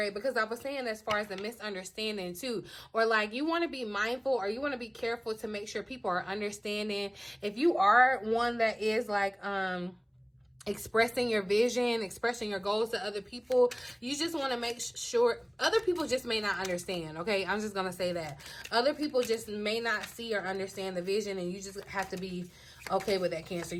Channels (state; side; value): identical; both; correlation 1.00